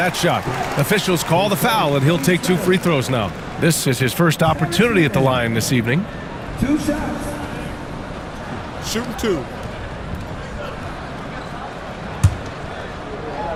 shot. Officials call the foul, and he'll take 2 free throws now. This is his first opportunity at the line this evening. 2 shots. Shooting 2.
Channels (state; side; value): identical; both; correlation 1.00